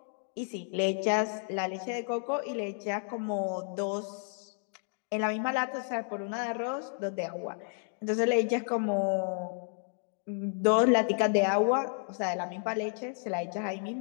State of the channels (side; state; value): right; silent; 57 dB below the other